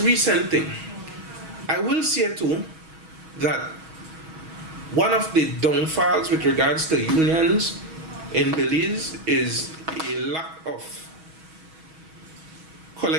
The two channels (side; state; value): left; late; 6.3 ms